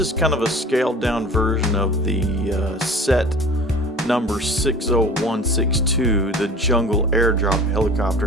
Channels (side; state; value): both; normal; correlation 0.42